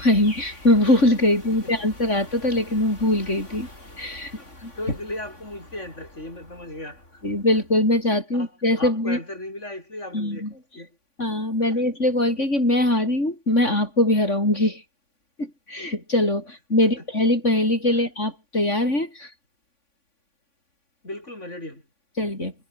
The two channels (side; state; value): right; late; 3.5 ms